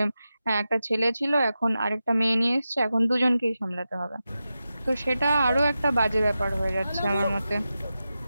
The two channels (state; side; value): inverted; both; correlation -0.92